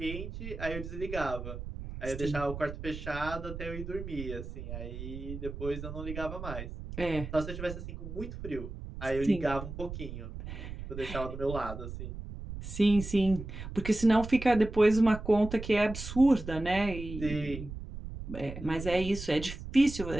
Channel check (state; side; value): noise; right; rumble, 9 dB below the sound